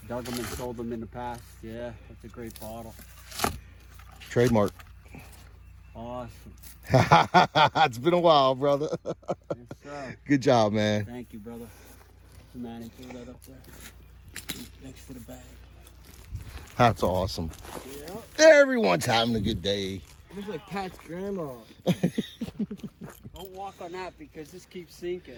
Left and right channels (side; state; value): both; identical; correlation 1.00